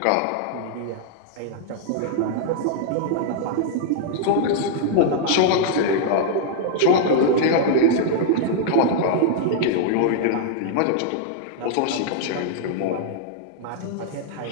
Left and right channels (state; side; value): different; both; correlation -0.01